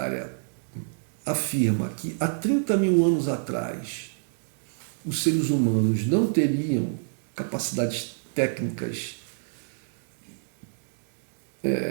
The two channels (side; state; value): left; silent; digital silence